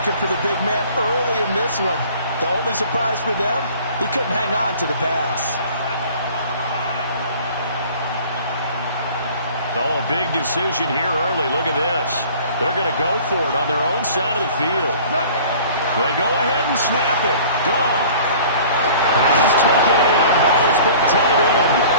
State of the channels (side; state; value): both; inverted; correlation -0.47